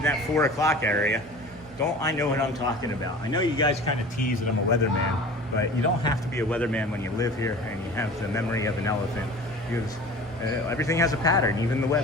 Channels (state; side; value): normal; both; correlation 0.40